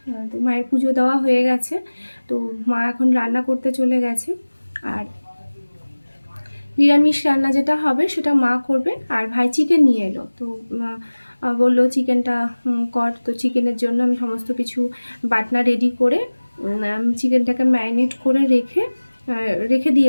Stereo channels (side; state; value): both; inverted; correlation -1.00